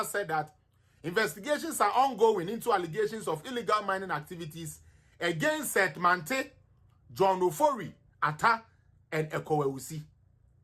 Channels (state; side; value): identical; both; correlation 1.00